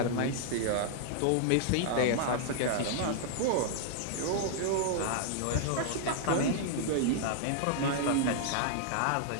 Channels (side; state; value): both; different; correlation -0.01